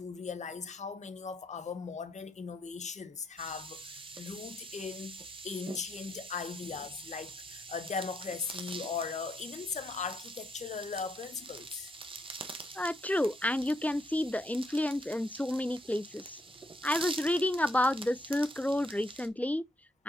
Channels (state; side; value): normal; both; correlation 0.76